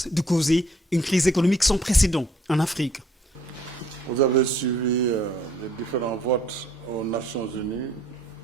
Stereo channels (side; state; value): both; normal; correlation 0.61